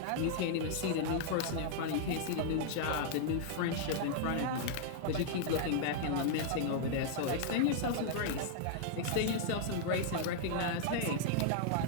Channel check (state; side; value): different; both; correlation -0.01